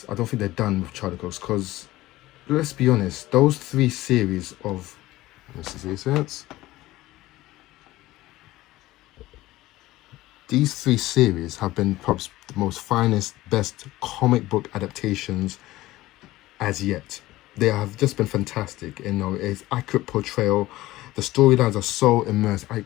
I don't think they're done with Charlie Cox, because let's be honest, those 3 series of, these 3 series have been perhaps the most finest, best comic book adaptations as yet. They have just been fantastic. You know, it's accurate portrayal. The storylines are so immersed. I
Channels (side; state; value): right; quieter; 17.2 dB